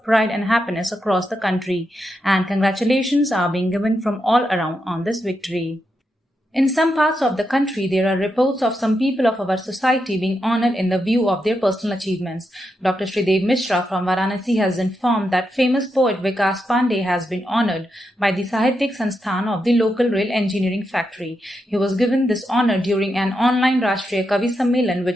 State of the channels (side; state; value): both; normal; correlation 0.85